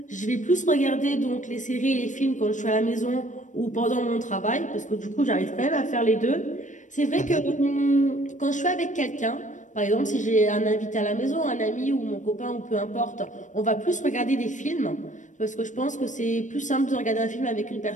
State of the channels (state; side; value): late; right; 0.36 ms